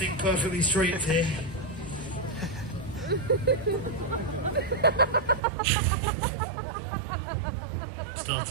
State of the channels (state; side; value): drops out; left; at 5.4 s